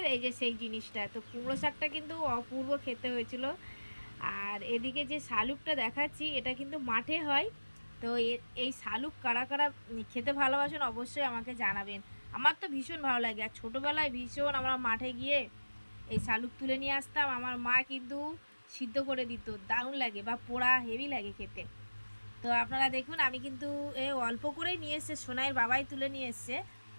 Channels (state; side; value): inverted; both; correlation -1.00